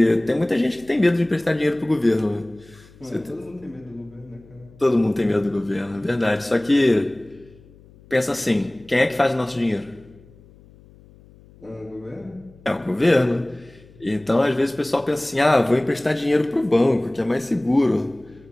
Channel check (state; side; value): noise; left; hum, 25 dB below the sound